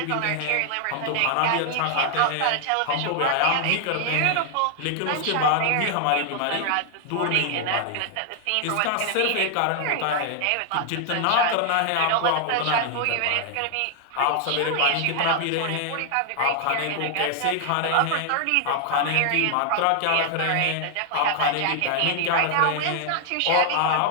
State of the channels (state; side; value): different; both; correlation 0.00